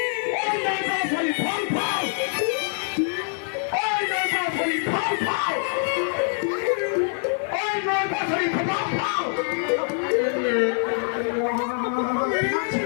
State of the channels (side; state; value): right; silent; 56 dB below the other